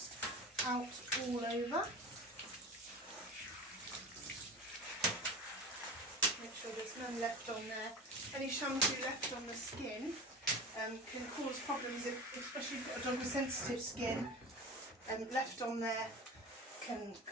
out all over, make sure there's none left on there. Any shampoo left on the skin can cause problems, especially if you've got a dog with sensitive skin. Left on there can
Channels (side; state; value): both; normal; correlation 0.33